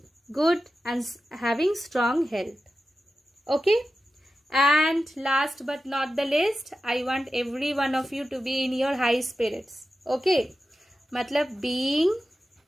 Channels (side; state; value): both; normal; correlation 0.92